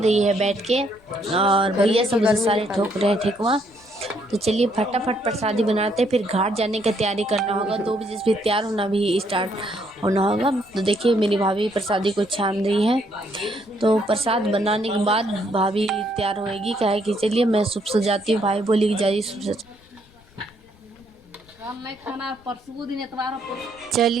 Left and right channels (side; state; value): left; noise; rumble, 28 dB below the sound